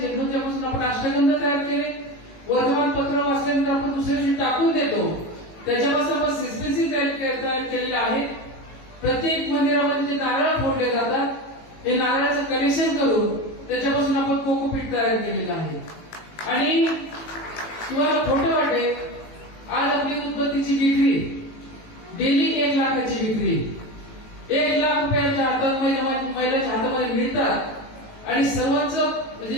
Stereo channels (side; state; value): right; late; 18 ms